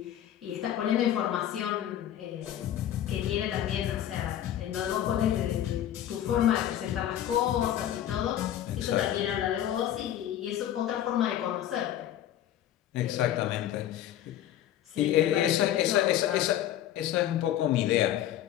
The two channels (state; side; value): quieter; right; 11.6 dB